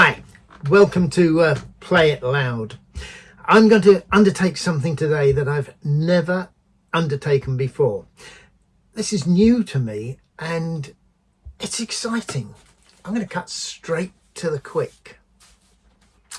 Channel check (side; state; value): both; identical; correlation 1.00